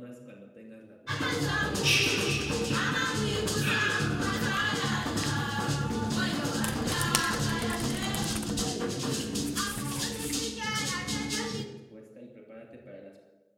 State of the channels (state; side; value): identical; both; correlation 1.00